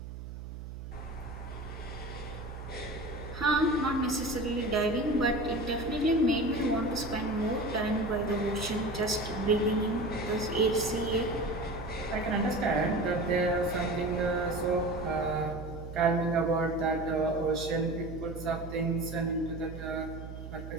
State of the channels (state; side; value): noise; right; hum, 10 dB below the sound